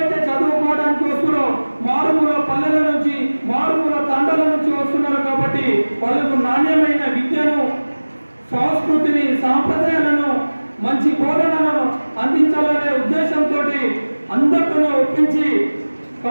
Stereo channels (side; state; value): both; inverted; correlation -1.00